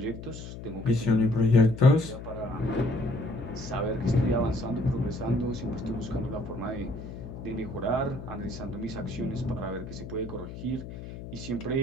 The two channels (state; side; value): noise; left; hum, 11 dB below the sound